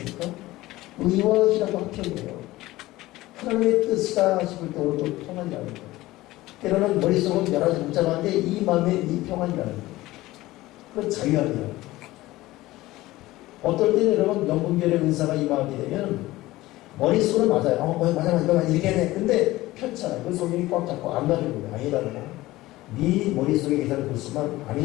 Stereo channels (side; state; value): right; quieter; 17.8 dB